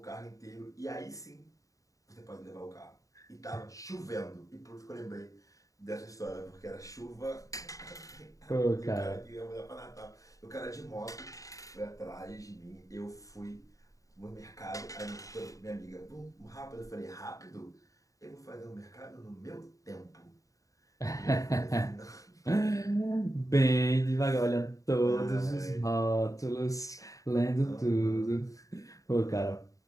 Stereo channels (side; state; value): right; late; 0.16 ms